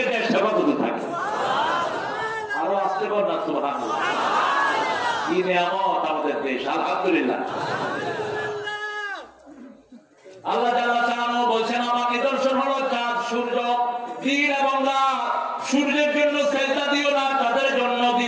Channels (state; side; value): identical; both; correlation 1.00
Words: দেশ হেফাজতে থাকে। আরো আসতে পার না সুবহানাল্লাহ। কি নিয়ামত আমাদের দেশ, আলহামদুলিল্লাহ। আল্লাহ জাল্লা শাআনহু বলছেন আমার নিদর্শন হলো চাঁদ, সূর্য, দিন এবং রাত। সূর্যের জন্য সেজদা দিও না, তাদের জন্য